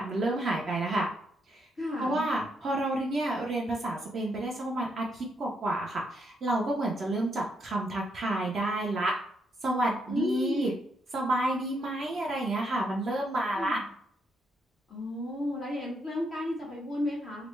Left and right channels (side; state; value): both; normal; correlation 0.77